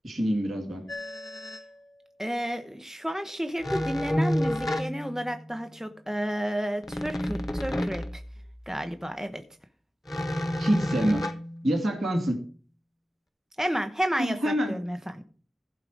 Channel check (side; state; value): both; normal; correlation 0.95